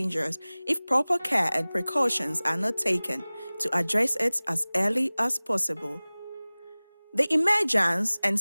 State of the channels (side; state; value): both; inverted; correlation -1.00